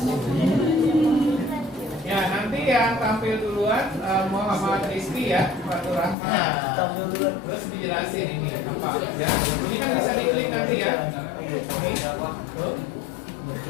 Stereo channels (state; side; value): drops out; right; at 6.2 s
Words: Ya, nanti yang tampil duluan Muhammad Rizky ya, Fatur Rahman. Terus dijelasin ini apa ya. Ini kan bisa diklik nanti ya. Ini tuh.